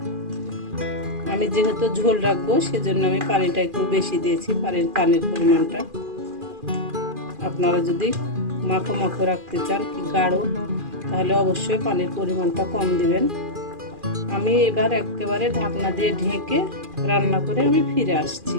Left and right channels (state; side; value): late; left; 2.4 ms